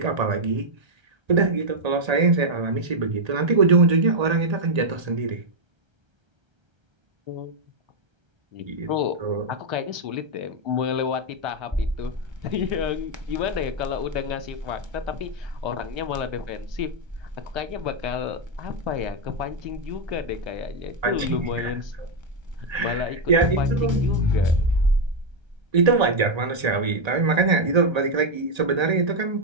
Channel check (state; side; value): late; left; 1.3 ms